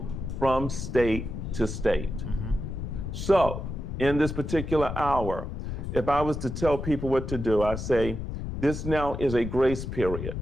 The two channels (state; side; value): noise; left; rumble, 6 dB below the sound